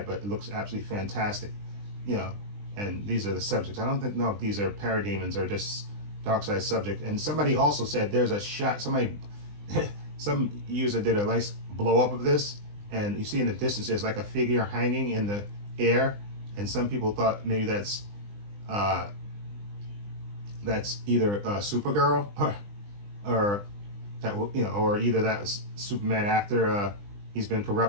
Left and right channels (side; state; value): left; late; 20 ms